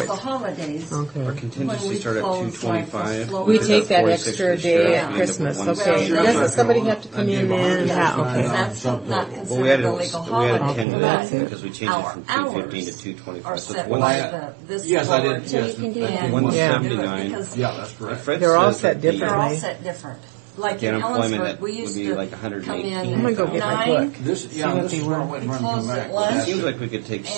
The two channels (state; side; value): drops out; left; at 10.9 s